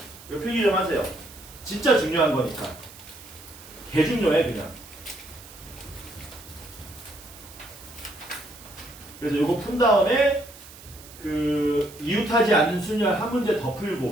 이거 필기 좀 하세요. 진짜 중요한 거니까. 개 중요해 그냥. 그래서 이거 푼 다음에 그 이웃하지 않는 순열 한 문제 더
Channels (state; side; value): noise; right; hiss, 19 dB below the sound